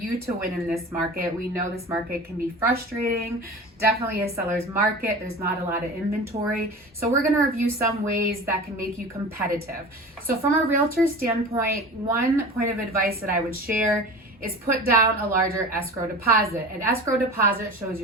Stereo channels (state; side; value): normal; both; correlation 0.35